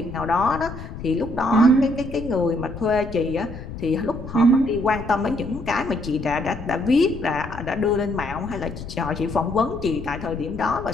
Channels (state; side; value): noise; left; rumble, 11 dB below the sound